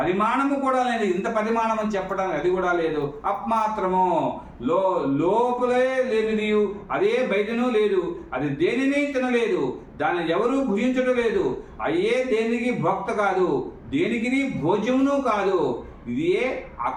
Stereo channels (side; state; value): both; identical; correlation 1.00